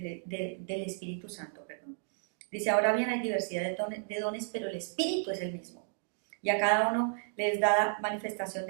Espíritu Santo. Dice, ahora bien hay diversidad de dones, pero el Espíritu es el mismo. Y a cada uno les da manifestación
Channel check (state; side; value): silent; left; digital silence